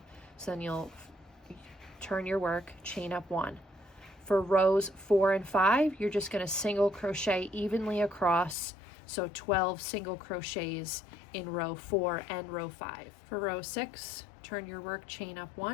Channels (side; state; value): right; drops out; at 8.6 s